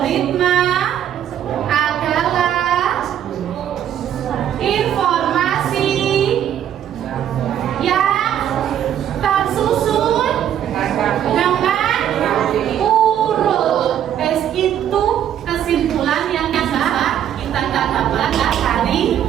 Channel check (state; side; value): quieter; left; 10.2 dB